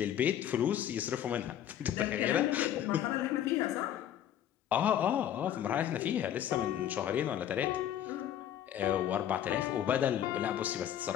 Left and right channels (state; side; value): quieter; right; 10.6 dB